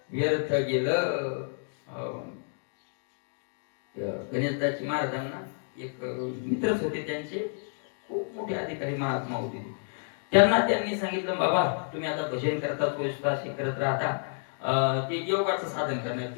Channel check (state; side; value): silent; right; digital silence